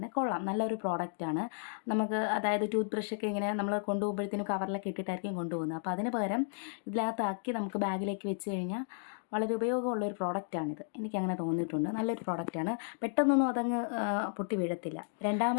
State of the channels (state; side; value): silent; right; digital silence